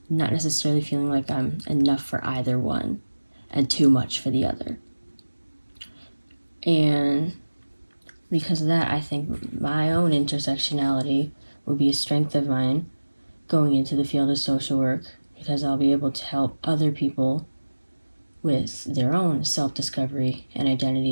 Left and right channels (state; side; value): inverted; both; correlation -1.00